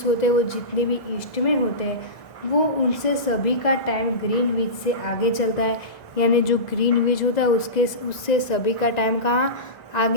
होते हैं वो जितने भी ईस्ट में होते हैं वो उनसे सभी का टाइम ग्रीनविच से आगे चलता है। यानी जो ग्रीनविच होता है उससे सभी का टाइम कहाँ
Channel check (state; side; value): late; right; 1.9 ms